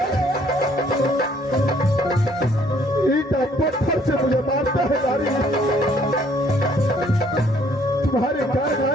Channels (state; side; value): normal; both; correlation 0.63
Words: ईटा पत्थर से मुझे मारता है नारी। तुम्हारे कारण